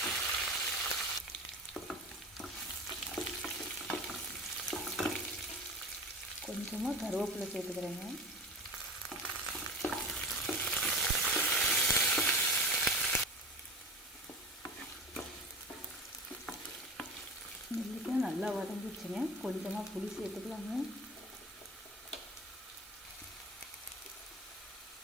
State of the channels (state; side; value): normal; both; correlation 0.33